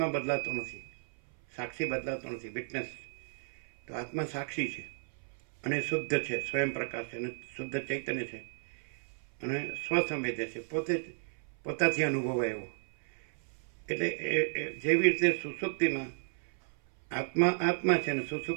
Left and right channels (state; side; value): silent; left; 55 dB below the other